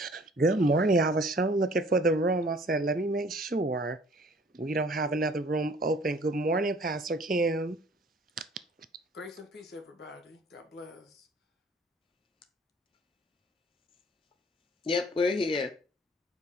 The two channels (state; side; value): normal; both; correlation 0.54